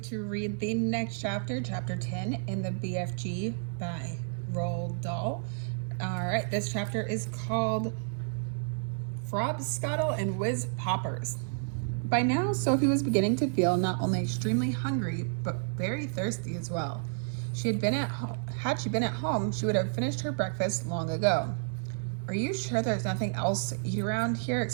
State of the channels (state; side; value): silent; left; 57 dB below the other